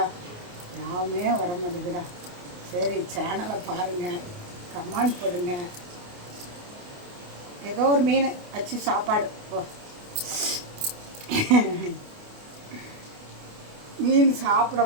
யாவுமே வர மாட்டேங்குடா. சரி, சேனலை பாருங்கள், கமெண்ட் பண்ணுங்க. ஏதோ ஒரு மீன் வச்சு சாப்பாடு. ஓ, மீன் சாப்பிட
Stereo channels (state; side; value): late; left; 28 ms